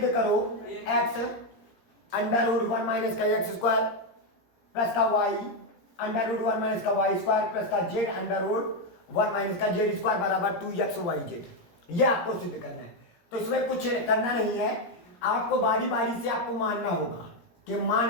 करो एक्स अंडर रूट 1 माइनस का एक्स स्क्वायर प्लस का वाई अंडर रूट 1 माइनस का वाई स्क्वायर प्लस का जेड अंडर रूट 1 माइनस का जेड स्क्वायर बराबर 2x वाई जेड। ये आपको सिद्ध करना है। तो इसमें कुछ करना नहीं है, आपको बारी बारी से आपको मानना होगा कि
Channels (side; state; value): right; late; 17 ms